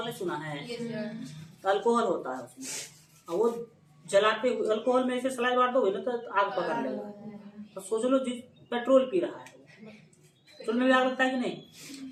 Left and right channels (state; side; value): identical; both; correlation 1.00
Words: ने सुना है, अल्कोहल होता है उसमें, और वो जलाते हुए अल्कोहल में ऐसे स्लाइड मार दोगे ना तो आग पकड़ लेगा। तो सोच लो पेट्रोल पी रहा है, पेट्रोल में भी आग लगता है कि नहीं?